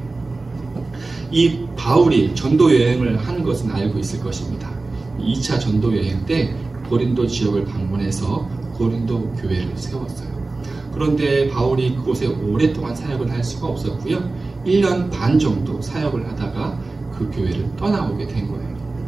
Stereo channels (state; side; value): quieter; left; 3.4 dB